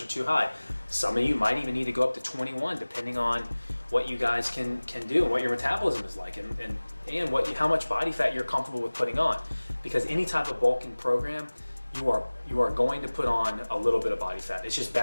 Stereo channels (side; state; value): both; inverted; correlation -1.00